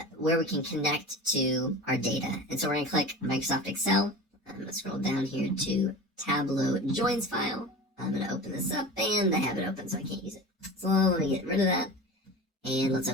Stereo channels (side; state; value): both; normal; correlation 0.33